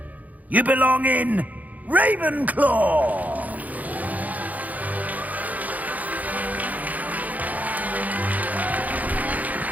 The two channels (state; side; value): late; left; 0.077 ms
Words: You belong in Ravenclaw!